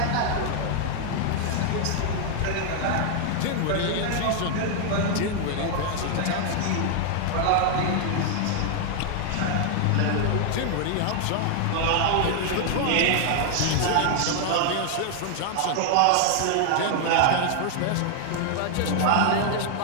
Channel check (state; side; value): different; both; correlation 0.00